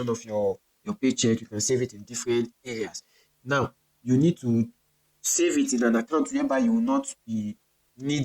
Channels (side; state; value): both; identical; correlation 1.00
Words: of your paycheck. You can save it in different areas. Now you need to save it in an account whereby you will not be